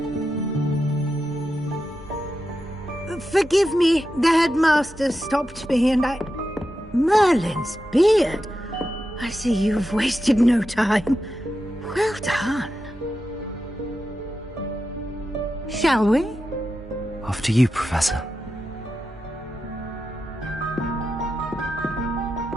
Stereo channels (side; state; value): both; normal; correlation 0.89